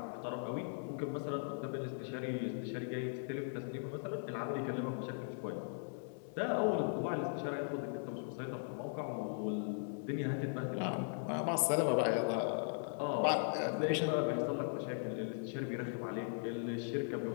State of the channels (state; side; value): silent; right; digital silence